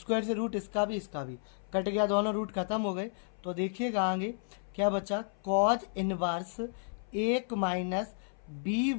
से रूट इसका भी, इसका भी कट गया, दोनों रूट खत्म हो गए। तो देखिएगा आगे क्या बचा? कॉज इनवर्स 1 माइनस बी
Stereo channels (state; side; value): silent; right; 56 dB below the other